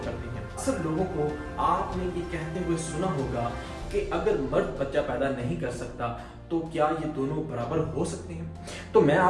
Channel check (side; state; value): both; identical; correlation 1.00